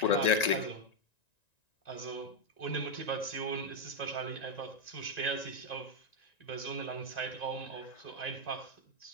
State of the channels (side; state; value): right; late; 1.9 ms